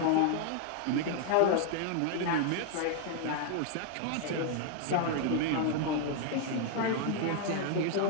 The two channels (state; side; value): different; both; correlation 0.00